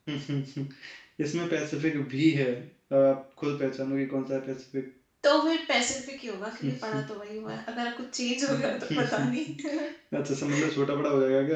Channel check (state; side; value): identical; both; correlation 1.00